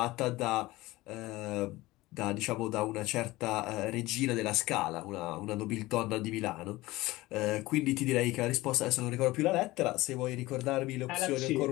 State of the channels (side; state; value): right; quieter; 19.2 dB